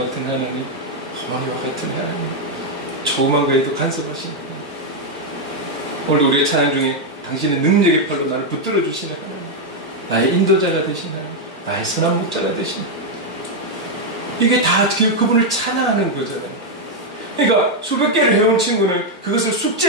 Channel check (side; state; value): both; normal; correlation 0.01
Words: 같은 하나님, 어머니와 같은 하나님, 조그만 거에도 간섭하신 하나님. 오늘 우리의 찬양 중에 당신의 능력의 팔로 나를 붙들어 주시는 하나님, 나의 인도자가 되신 하나님, 나의 선한 목자가 되신 하나님. 이게 다 그분을 찬양하는 거잖아요. 그러니까 수백 개를 해온 친구는 그것을